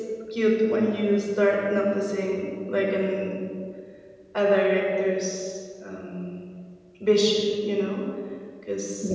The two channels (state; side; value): identical; both; correlation 1.00